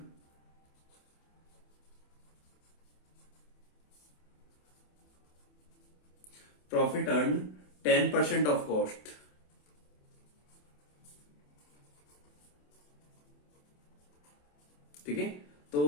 profit earn 10% of cost. ठीक है, तो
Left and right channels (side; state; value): right; late; 27 ms